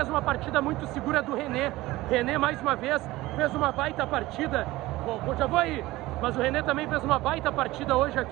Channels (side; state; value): left; quieter; 18.4 dB